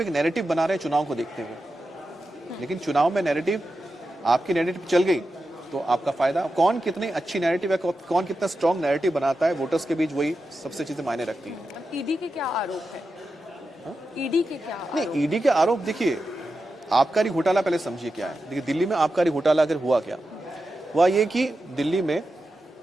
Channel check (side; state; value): both; normal; correlation 0.90